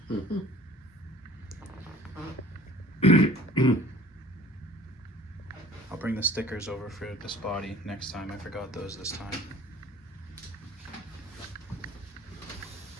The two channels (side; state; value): both; normal; correlation 0.48